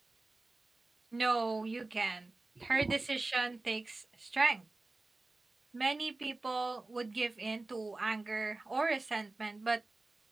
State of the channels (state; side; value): quieter; left; 3.2 dB